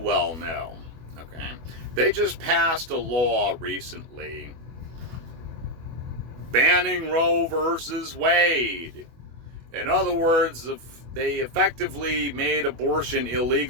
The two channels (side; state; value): left; late; 24 ms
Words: know. Okay, they just passed a law recently banning Roe versus Wade. In other words, they effectively made abortion